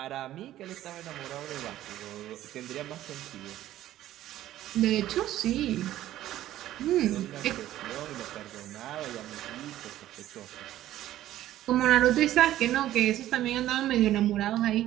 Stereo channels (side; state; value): left; quieter; 13.6 dB